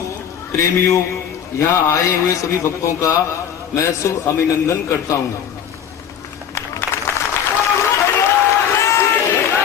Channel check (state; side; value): quieter; right; 8.7 dB